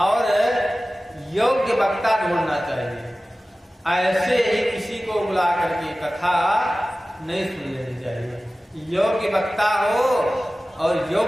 योग्य वक्ता ढूंढना चाहिए। ऐसे ही किसी को बुला करके कथा नहीं सुन लेनी चाहिए। योग्य वक्ता हो और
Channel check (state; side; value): normal; both; correlation 0.96